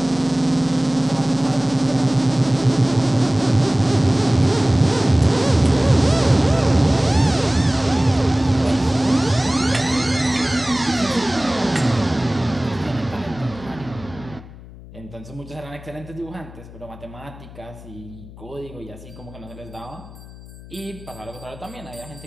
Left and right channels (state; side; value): noise; left; hum, 18 dB below the sound